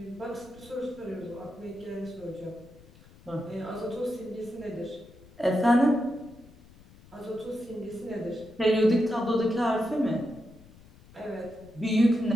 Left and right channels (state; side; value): noise; left; rumble, 23 dB below the sound